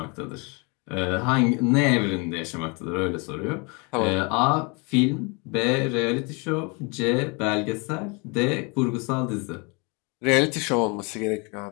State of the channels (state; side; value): quieter; right; 30.8 dB